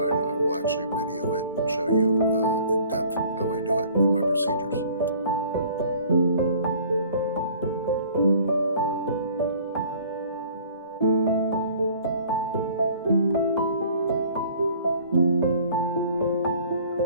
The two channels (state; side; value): inverted; both; correlation -0.52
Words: I will actually video it and show you in depth how I do it and my procedures.